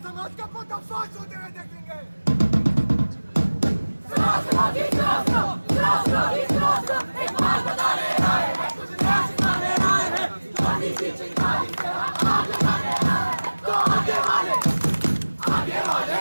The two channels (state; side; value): inverted; both; correlation -1.00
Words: का पर्दाफाश होते हुए देखेंगे। तो आगे वाले